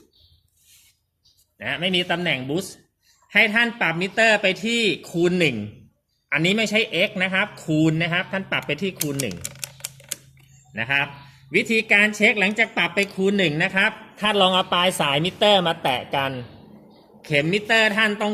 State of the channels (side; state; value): both; identical; correlation 1.00